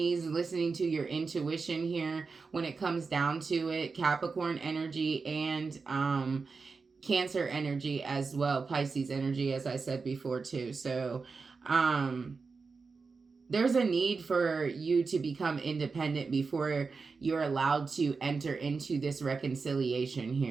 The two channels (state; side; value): quieter; left; 4.6 dB